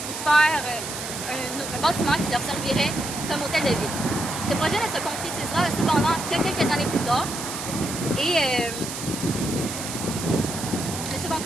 faire un bâtiment qui leur servirait comme hôtel de ville. Ce projet ne se concrétisera cependant que quelques années plus tard et ne se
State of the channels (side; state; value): right; noise; hiss, 7 dB below the sound